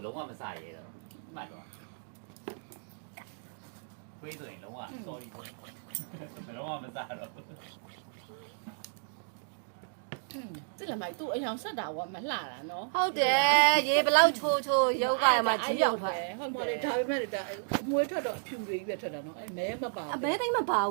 လုံးဝမစားရဲတော့မှတ်တော့ခွေးဆိုရင်လုံးဝ sorry လုံးဝမစားတော့တိလာမိုက်သူ့အယောင်ဆက်တာကမလှတာနော်ဟုတ်တယ်ရေဘလောက်ချိုးချိုးရုပ်ကရမှာကြီးအောင်ထွက်ဟုတ်ပါလေဒါပေမဲ့ဒါမွေးထွက်တော့ဖြူလေးပဲထွက်တာနော်အဲမဲမပါအမဲတိုင်းမပါဘ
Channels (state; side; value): silent; left; digital silence